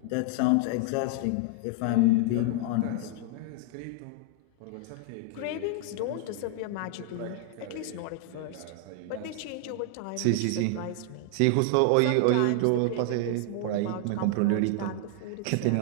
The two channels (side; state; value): both; different; correlation 0.00